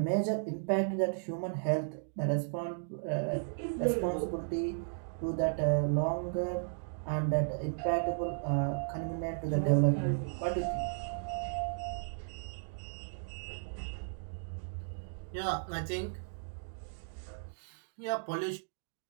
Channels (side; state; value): left; silent; digital silence